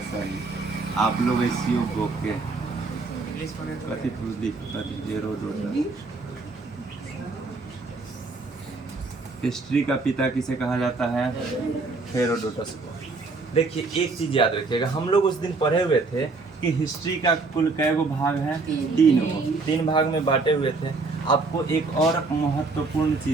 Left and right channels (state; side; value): quieter; left; 3.8 dB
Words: सही, आप लोग ऐसी बुक के हेरोडोटस। हिस्ट्री का पिता किसे कहा जाता है? हेरोडोटस को। देखिए एक चीज याद रखिएगा, हम लोग उस दिन पढ़े हुए थे कि हिस्ट्री का कुल कै गो भाग है? तीन भाग में बांटे हुए थे। आपको एक और महत्वपूर्ण